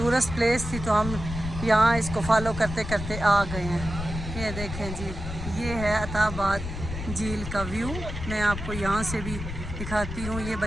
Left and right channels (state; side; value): noise; left; rumble, 7 dB below the sound